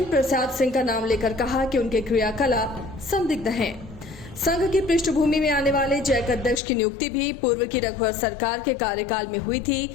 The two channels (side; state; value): right; drops out; at 6.6 s